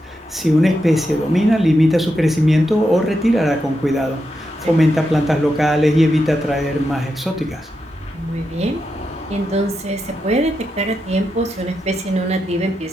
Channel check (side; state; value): both; normal; correlation 0.86